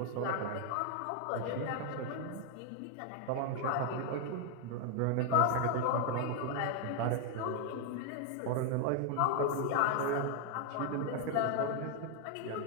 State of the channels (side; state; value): both; different; correlation 0.00